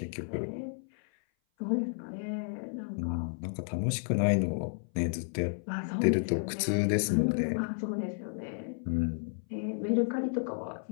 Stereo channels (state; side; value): silent; right; 56 dB below the other